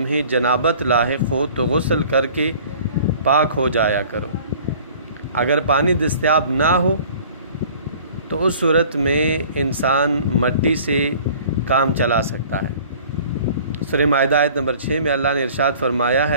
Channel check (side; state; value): both; inverted; correlation -0.49